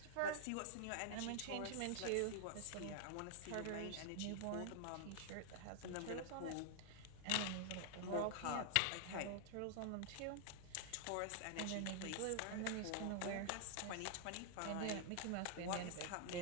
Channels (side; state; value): both; different; correlation -0.01